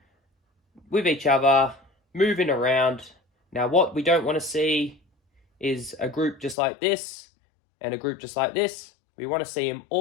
with each other, moving around. Now, what we don't want to see is a group just like this and a group just like this. We want to see them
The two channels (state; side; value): drops out; right; at 6.6 s